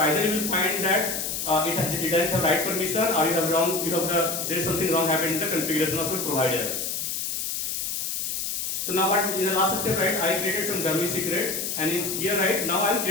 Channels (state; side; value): noise; left; hiss, 2 dB below the sound